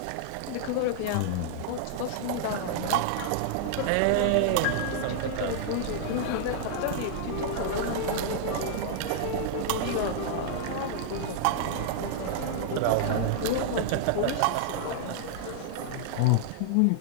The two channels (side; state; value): both; different; correlation -0.01